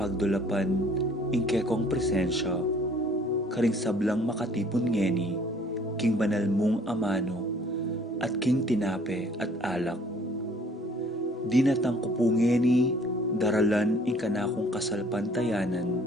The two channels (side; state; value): both; normal; correlation 0.56